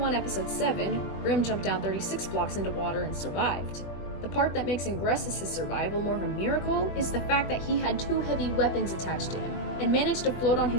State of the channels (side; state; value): right; late; 21 ms